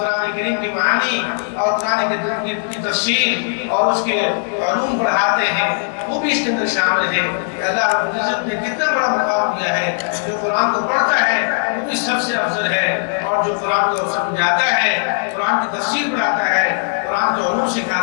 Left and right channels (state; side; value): silent; right; digital silence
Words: کریم کی معانی اور قرآن کریم کی تفسیر اور اس کے علوم پڑھاتے ہیں وہ بھی اس کے اندر شامل ہیں. اللہ رب العزت نے کتنا بڑا مقام دیا ہے. جو قرآن کو پڑھتا ہے وہ بھی سب سے افضل ہے، اور جو قرآن کو سمجھاتا ہے، قرآن کی تفسیر پڑھاتا ہے، قرآن کے علوم